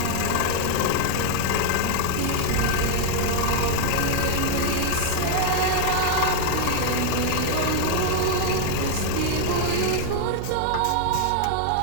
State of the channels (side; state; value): both; different; correlation 0.00